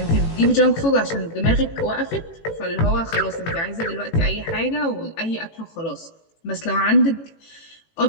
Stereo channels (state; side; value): late; right; 18 ms